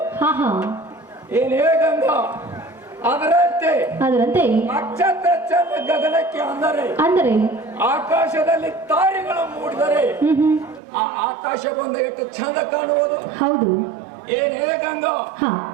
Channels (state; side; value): drops out; left; at 10.8 s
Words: ಏನೇ ಗಂಗಾ, ಅದರಂತೆ ನಕ್ಷತ್ರ ಚಂದ ಗಗನಕ್ಕೆ ಅಂದರೆ ಆಕಾಶದಲ್ಲಿ ತಾರೆಗಳು ಮೂಡಿದರೆ ಆ ಆಕಾಶ ಬಂದ ಎಷ್ಟು ಚಂದ ಕಾಣುವುದು. ಹೌದು. ಏನೇ ಗಂಗಾ,